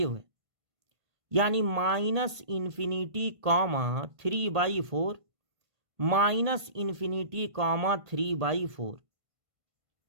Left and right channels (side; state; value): left; late; 1.5 ms